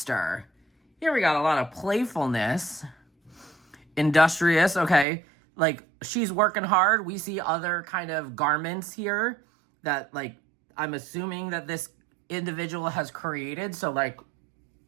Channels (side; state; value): left; drops out; at 5.1 s